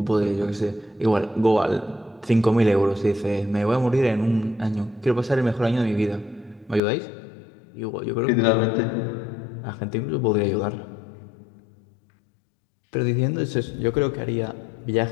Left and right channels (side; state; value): right; drops out; at 6.8 s